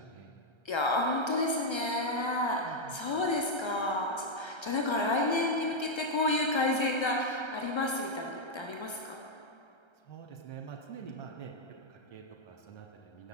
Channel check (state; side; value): late; right; 1.3 ms